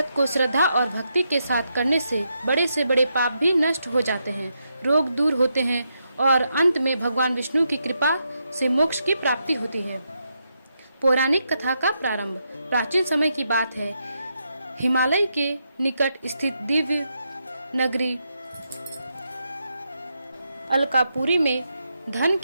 को श्रद्धा और भक्ति के साथ करने से बड़े पाप भी नष्ट हो जाते हैं, रोग दूर होते हैं और अंत में भगवान विष्णु की कृपा से मोक्ष की प्राप्ति होती है। पौराणिक कथा का प्रारंभ प्राचीन समय की बात है। हिमालय के निकट स्थित दिव्य नगरी अलकापुरी में धन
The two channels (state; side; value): inverted; both; correlation -0.82